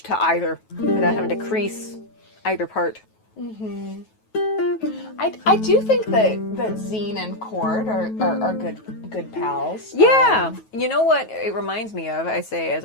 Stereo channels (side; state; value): right; late; 9.2 ms